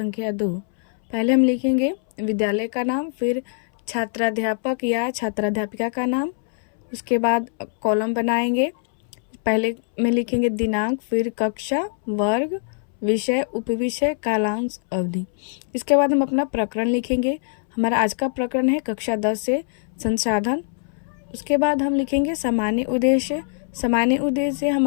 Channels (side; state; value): right; silent; 64 dB below the other